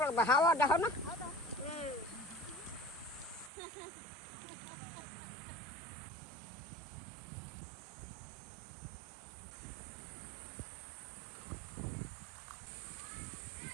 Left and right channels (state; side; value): drops out; left; at 3.5 s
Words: লাগবে হাওয়া দেখো না